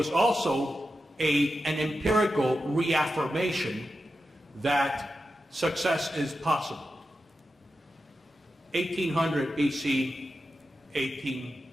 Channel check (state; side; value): normal; both; correlation 0.90